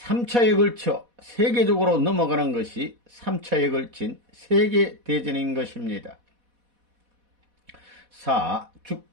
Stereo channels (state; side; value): late; left; 4.1 ms